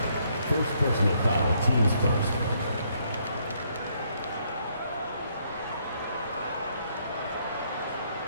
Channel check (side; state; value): both; inverted; correlation -0.71